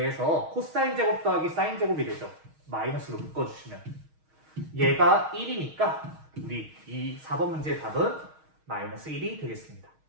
코사인 제곱 더하기 sin 제곱이 되죠. 마이너스로 묶어주시면. 얘가 1이니까 우리 이 4번 문제의 답은 마이너스 1이 되겠습니다.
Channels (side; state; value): left; late; 6.4 ms